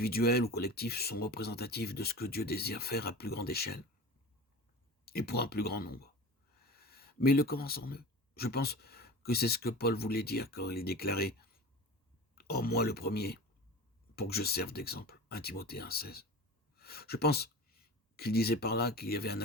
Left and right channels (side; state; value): both; normal; correlation 0.35